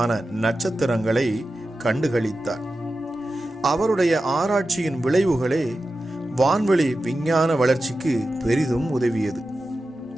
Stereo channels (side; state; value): both; normal; correlation 0.93